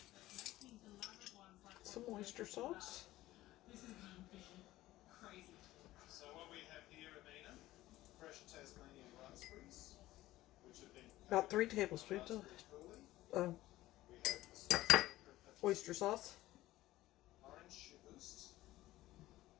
Some oyster sauce. So what we have here, Amina, fresh Tasmanian raspberries, which have been About 3 tablespoons of we have oyster sauce. orange boost,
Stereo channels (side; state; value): right; quieter; 16.3 dB